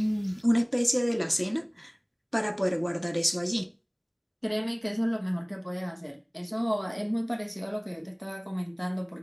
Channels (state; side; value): identical; both; correlation 1.00